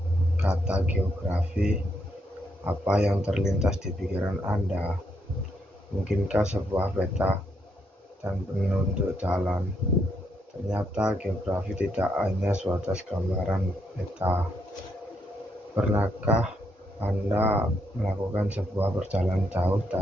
kata geografi, apa yang terlintas di pikiran Anda? Mungkinkah sebuah peta dan penunjuk jalan? Ternyata geografi tidak hanya sebatas gambaran peta. Pernahkah Anda melakukan sebuah perjalanan jauh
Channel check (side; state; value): both; normal; correlation 0.77